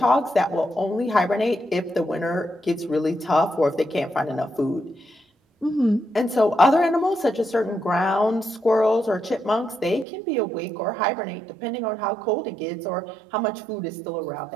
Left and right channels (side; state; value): left; drops out; at 10.1 s